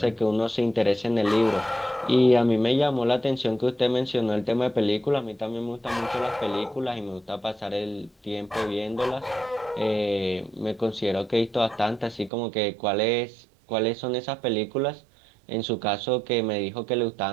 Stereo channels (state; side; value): drops out; left; at 12.3 s